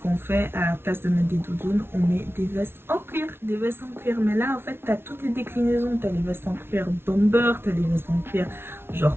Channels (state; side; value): late; left; 0.12 ms